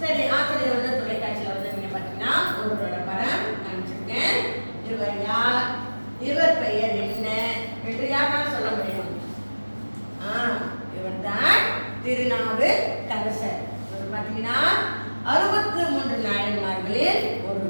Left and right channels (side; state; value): both; inverted; correlation -1.00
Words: சரி, ஆசிரியர் வந்து தொலைக்காட்சியில் வந்து நீங்க பார்த்தீங்கன்னா ஒருவரோட படம் காமிச்சிருக்கேன். இவர் யார், இவர் பெயர் என்ன என்று யாரால் சொல்ல முடியும்? இவர் தான் திருநாவுக்கரசர். இவர் பார்த்தீங்கன்னா 63 நாயன்மார்களில்